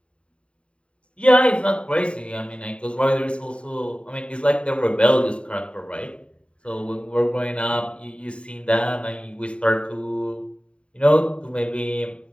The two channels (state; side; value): late; right; 0.058 ms